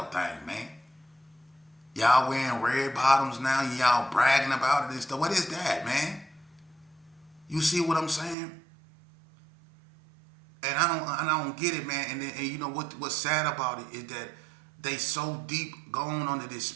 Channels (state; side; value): drops out; left; at 8.3 s